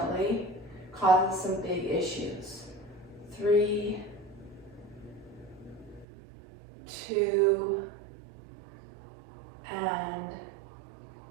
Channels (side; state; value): left; drops out; at 6.1 s